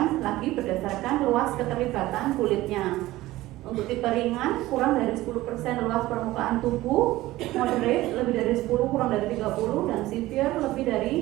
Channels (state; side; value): quieter; left; 17.1 dB